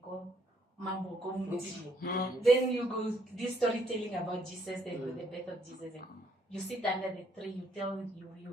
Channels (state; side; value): normal; both; correlation 0.69